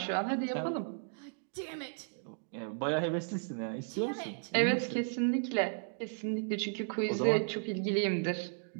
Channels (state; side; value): silent; left; digital silence